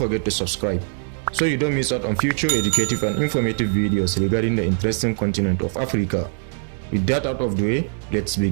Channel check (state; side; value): silent; left; digital silence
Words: to subscribe so you don't miss out on future educative and informative videos regarding the interesting continent of Africa. With that out of the way, let's